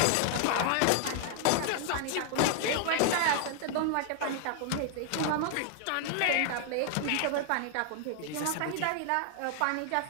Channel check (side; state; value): both; different; correlation 0.00